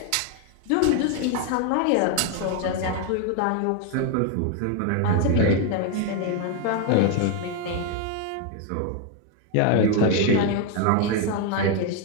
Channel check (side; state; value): both; different; correlation 0.01